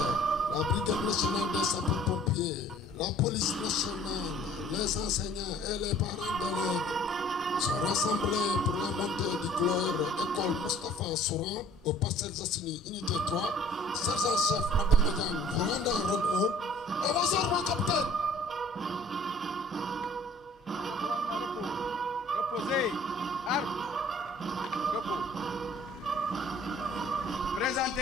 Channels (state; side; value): normal; both; correlation 0.53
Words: la brigade nationale des sapeurs-pompiers, la police nationale, les enseignants et les parents d'élèves sont rassemblés pour la montée du gloire école Moustapha Souran au Parcelles Assainies unité 3. Sergent-chef Madame Madiane, vous rendez en rôle 1. Avancez, mon capitaine. Reposez. Armes. Repos.